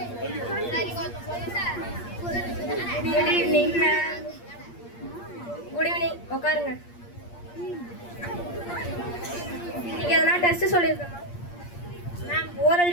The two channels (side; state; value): right; late; 8.5 ms